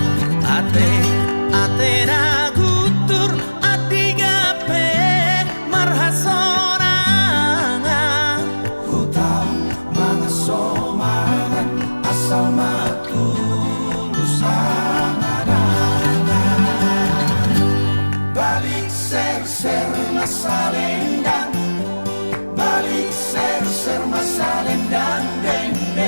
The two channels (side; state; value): both; inverted; correlation -1.00